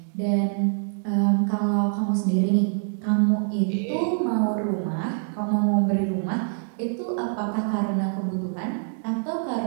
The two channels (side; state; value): left; silent; digital silence